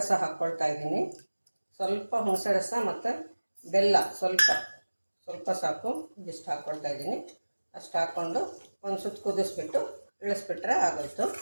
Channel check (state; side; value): inverted; both; correlation -1.00